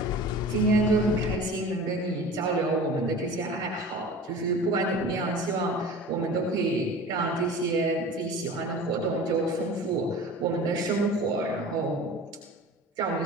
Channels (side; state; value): both; normal; correlation 0.38